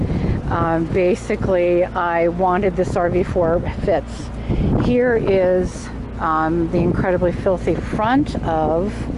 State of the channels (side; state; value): both; identical; correlation 1.00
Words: basically I wanted this RV for fits. Here is the incredibly filthy front of